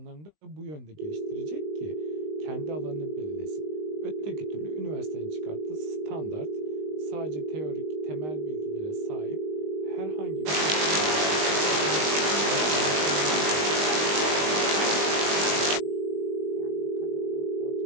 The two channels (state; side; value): late; left; 19 ms